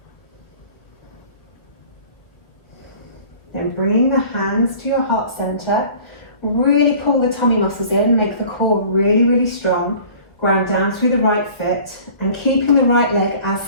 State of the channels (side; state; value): right; late; 1.5 ms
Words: Then bringing the hands to your heart center, really pull the tummy muscles in, make the core really, really strong. Ground down through the right foot and keeping the right leg as